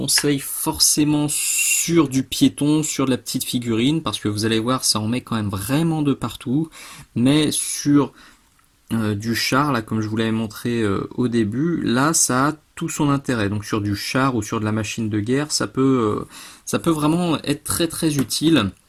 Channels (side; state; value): both; identical; correlation 1.00